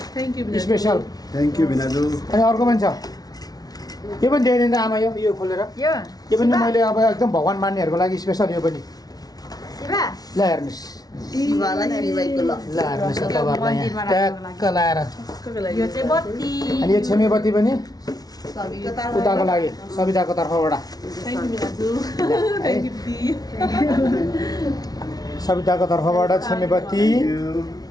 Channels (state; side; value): late; right; 0.19 ms